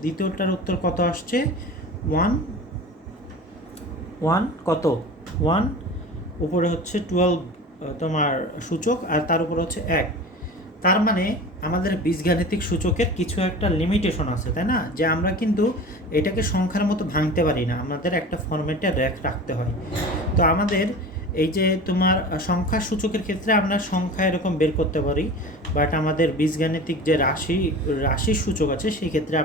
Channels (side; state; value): both; normal; correlation 0.36